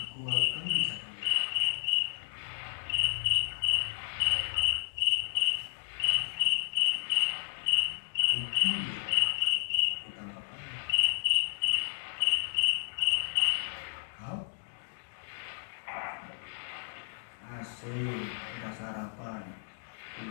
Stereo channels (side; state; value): right; silent; digital silence